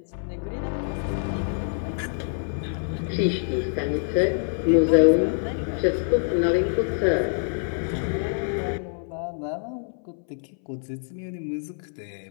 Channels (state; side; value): silent; right; 61 dB below the other